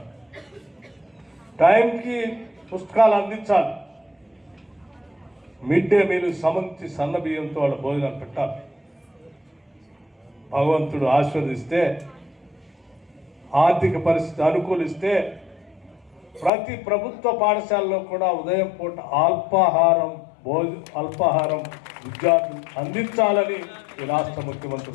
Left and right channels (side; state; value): right; drops out; at 16.5 s